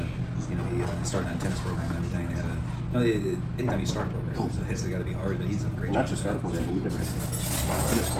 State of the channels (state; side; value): identical; both; correlation 1.00